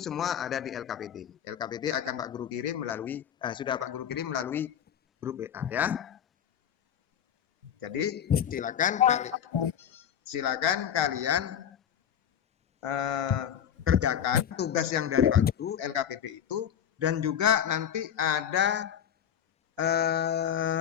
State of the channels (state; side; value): quieter; right; 9.1 dB